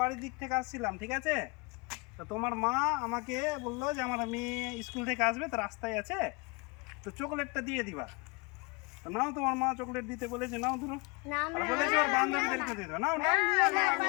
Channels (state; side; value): quieter; right; 29.3 dB